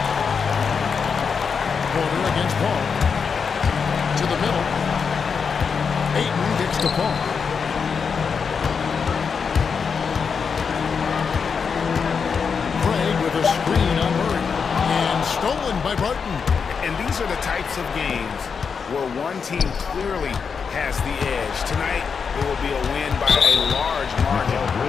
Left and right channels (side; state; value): right; quieter; 6.0 dB